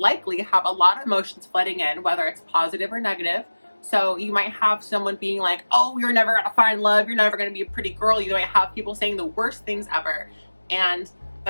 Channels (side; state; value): both; inverted; correlation -1.00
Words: have a lot of emotions flooding in, whether it's positive or negative. So you might have someone being like, oh, you're never gonna find love, you're never gonna be a pretty girl. You might have people saying the worst things ever. And